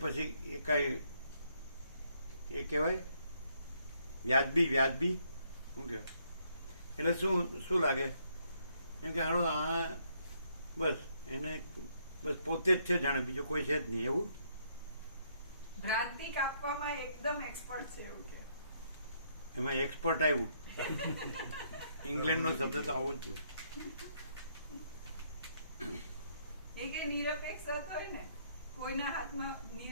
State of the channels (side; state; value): both; inverted; correlation -0.71